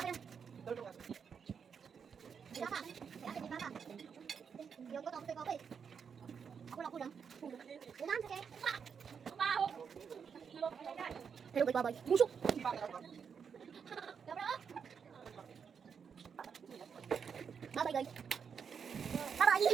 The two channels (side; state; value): left; quieter; 6.7 dB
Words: Hello, bye-bye. Busok! Bye-bye, guys. Bye-bye!